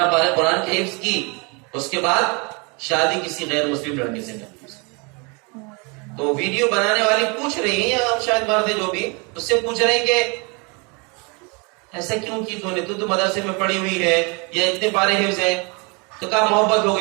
پارے قرآن کی حفظ کی، اس کے بعد شادی کسی غیر مسلم لڑکے سے کرتی۔ تو ویڈیو بنانے والی پوچھ رہی ہیں، یا شاید مرد جو بھی اس سے پوچھ رہے ہیں کہ ایسا کیوں کی تو مدرسے میں پڑھی ہوئی ہے یا اتنے پارے حفظ ہے؟ تو کہا محبت ہو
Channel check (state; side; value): quieter; left; 31.0 dB